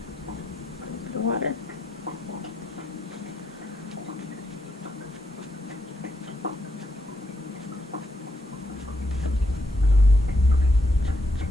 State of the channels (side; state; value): both; normal; correlation 0.78